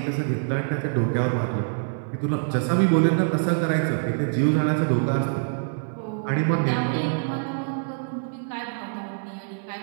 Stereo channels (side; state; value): left; silent; 62 dB below the other